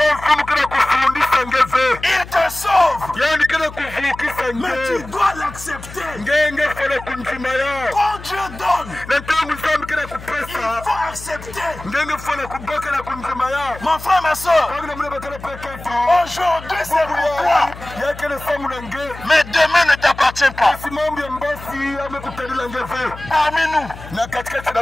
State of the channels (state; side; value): noise; left; hum, 15 dB below the sound